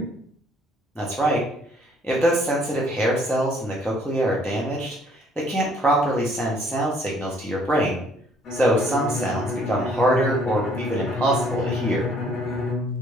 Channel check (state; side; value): normal; both; correlation 0.61